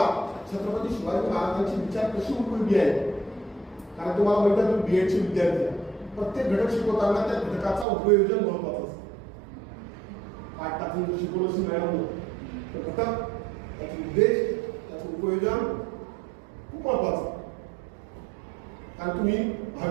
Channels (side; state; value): left; drops out; at 7.9 s